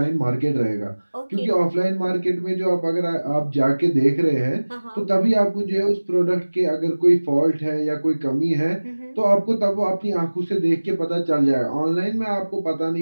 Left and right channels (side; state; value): both; inverted; correlation -1.00